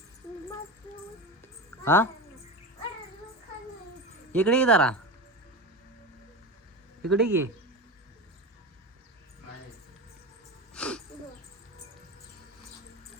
हा इकडे ये जरा, इकडे ये.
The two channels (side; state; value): both; normal; correlation 0.24